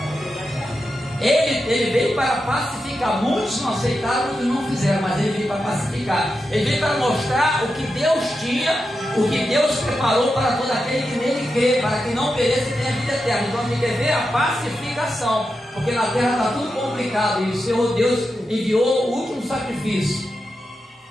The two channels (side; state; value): both; normal; correlation 0.88